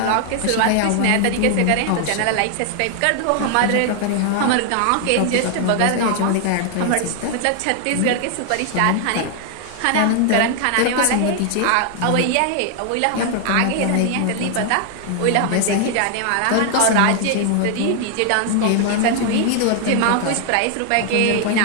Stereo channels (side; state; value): both; different; correlation 0.00